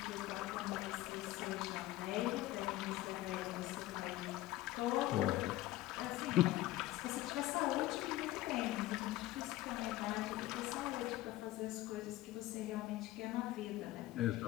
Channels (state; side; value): quieter; right; 16.3 dB